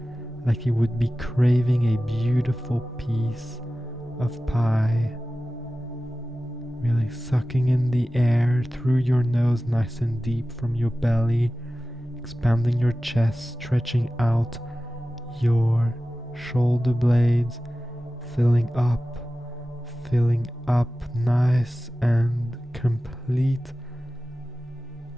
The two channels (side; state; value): both; normal; correlation 0.95